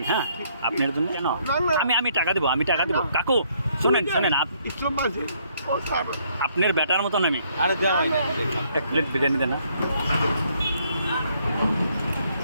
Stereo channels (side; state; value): both; inverted; correlation -0.68